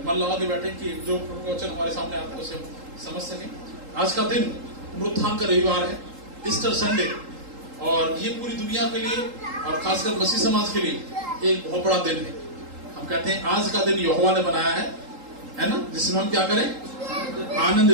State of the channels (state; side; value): late; left; 3.8 ms